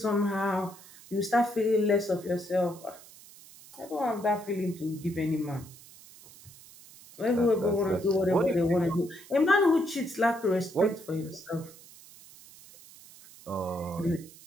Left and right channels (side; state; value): right; noise; hiss, 21 dB below the sound